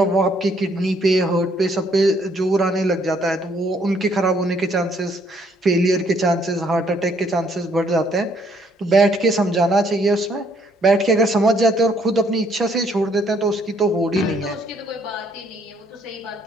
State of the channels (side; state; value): both; normal; correlation 0.67